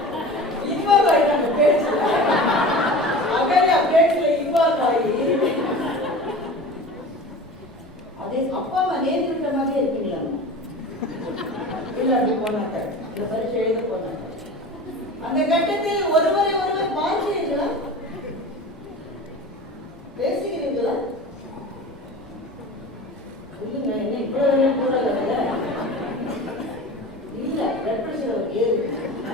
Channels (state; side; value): normal; both; correlation 0.35